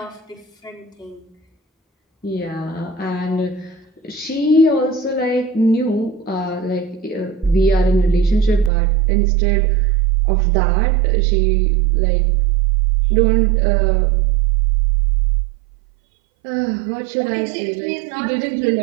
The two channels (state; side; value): drops out; left; at 8.7 s